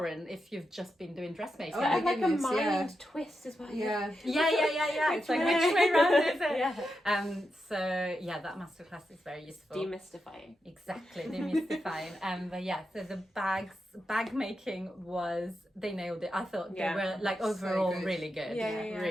if you've just been doing dressmaking. Oh my and like a goodness, mind twist as well. Yeah. It's like which way round is it? So that masterclass is very useful. Demystifying. Exactly, demystifying. But so the bag making they nailed it. I thought they were like overall good. really good.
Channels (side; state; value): both; normal; correlation 0.87